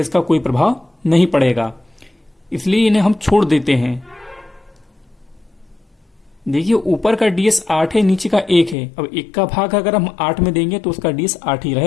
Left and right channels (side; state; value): right; drops out; at 8.8 s